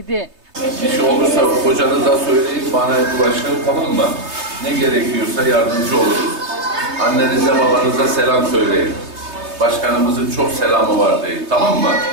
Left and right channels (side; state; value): left; late; 3.3 ms